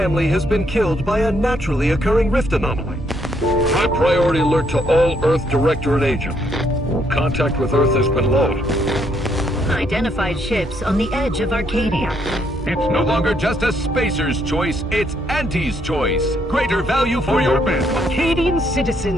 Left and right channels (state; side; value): normal; both; correlation 0.72